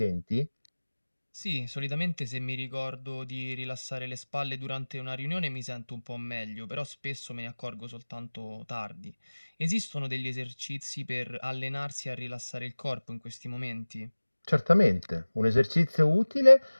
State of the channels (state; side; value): inverted; both; correlation -1.00